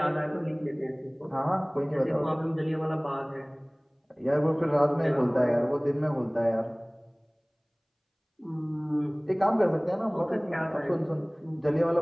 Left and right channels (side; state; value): both; identical; correlation 1.00